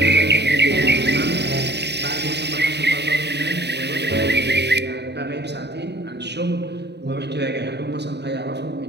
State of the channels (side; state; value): left; late; 0.49 ms